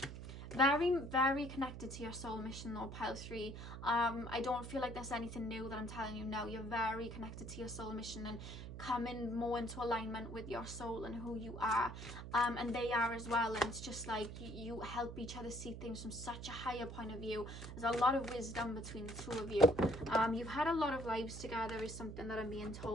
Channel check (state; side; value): noise; right; hum, 9 dB below the sound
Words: Very, very connected to your soul mission though, pile 3. I don't feel like there's anything new that I'm telling you now. You're very connected to your soul mission and coming more into alignment with your soul and who you are, and they are as well. And it's just like you help each other see things from such a higher point of view. There's a lot of wisdom between the two of you. You've had a lot of lives together is something that I'm being